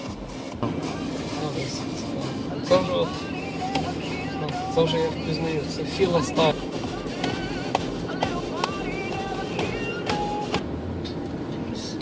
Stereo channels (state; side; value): identical; both; correlation 1.00